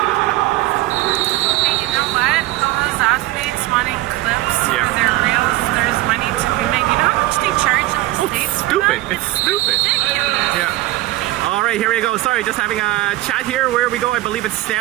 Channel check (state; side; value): quieter; left; 17.6 dB